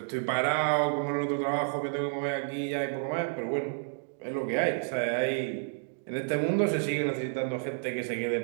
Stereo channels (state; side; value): silent; left; digital silence